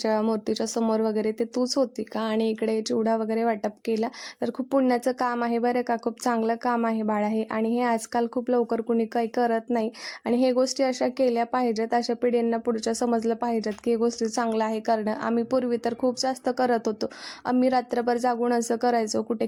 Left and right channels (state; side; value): identical; both; correlation 1.00